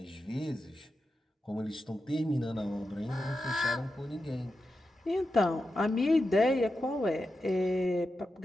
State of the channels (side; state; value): both; normal; correlation 0.90